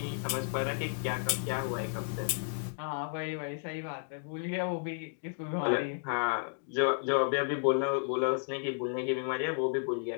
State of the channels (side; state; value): right; silent; digital silence